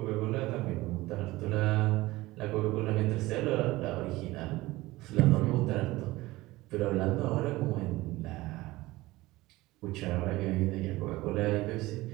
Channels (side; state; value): left; quieter; 19.1 dB